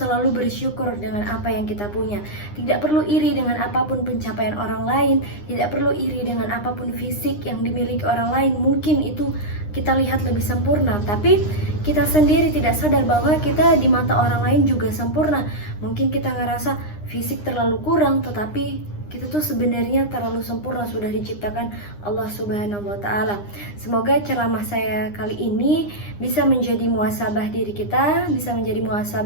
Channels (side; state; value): right; late; 9.8 ms